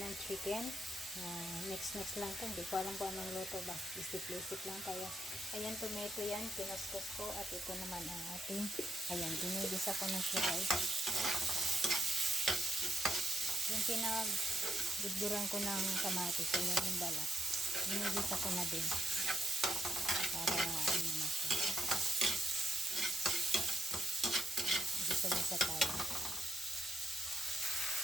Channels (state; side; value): normal; both; correlation 0.80